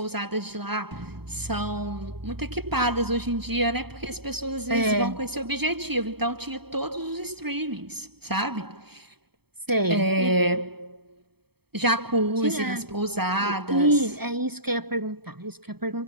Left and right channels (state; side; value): late; left; 0.97 ms